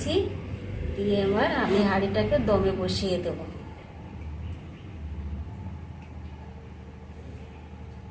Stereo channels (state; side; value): identical; both; correlation 1.00